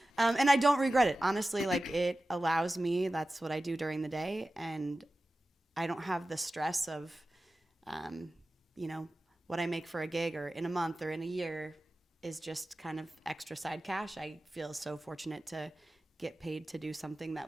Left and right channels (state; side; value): normal; both; correlation 0.95